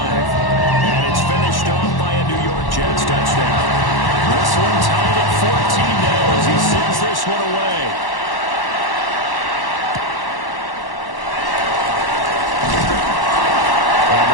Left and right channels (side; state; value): right; late; 1.1 ms